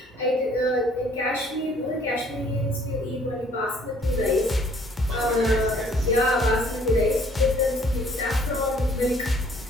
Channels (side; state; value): both; normal; correlation 0.59